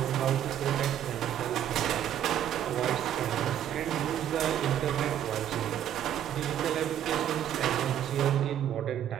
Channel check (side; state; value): left; quieter; 10.6 dB